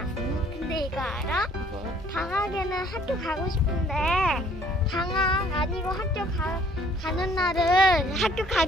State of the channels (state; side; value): normal; both; correlation 0.59